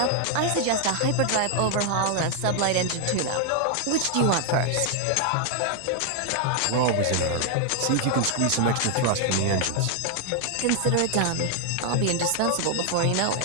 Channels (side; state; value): both; different; correlation 0.00